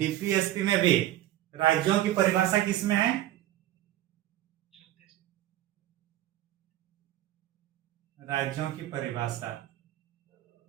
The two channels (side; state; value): left; quieter; 14.0 dB